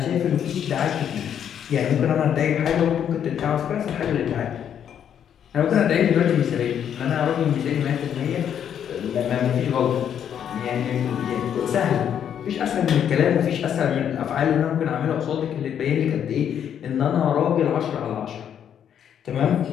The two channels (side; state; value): right; quieter; 9.0 dB